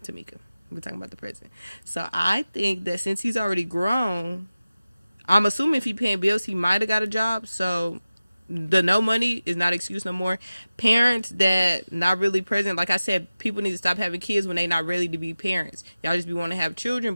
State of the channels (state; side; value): inverted; both; correlation -0.96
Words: Tamika. We talking about the present. So I think that since he's already grown, I'm assuming if he paying bills, he might have got a job. So the no money is not excuse no more. Parents that not really present, like I said, people need to stop having kids when they not ready to be parents. Y'all just be want to have children,